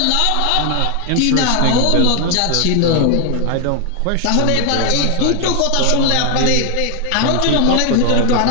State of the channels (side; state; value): both; different; correlation 0.00